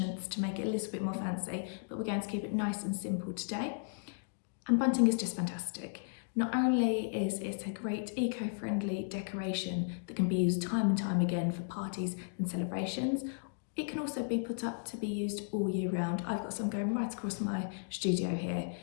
to make it a little bit more fancy, but we're going to keep it nice and simple today. And bunting is just fantastic. Not only is it a great eco-friendly decoration that can be used time and time again for parties and celebrations, it can also be put up to be used all year round. I've got some going right across my studio here,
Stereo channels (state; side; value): silent; right; digital silence